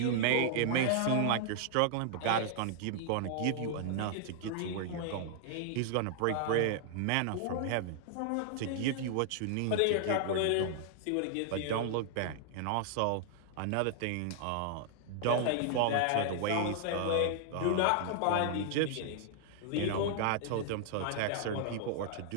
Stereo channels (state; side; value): different; both; correlation 0.00